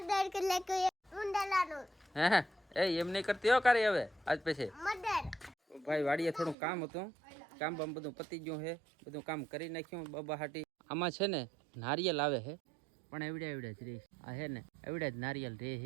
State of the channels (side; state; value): left; drops out; at 6.6 s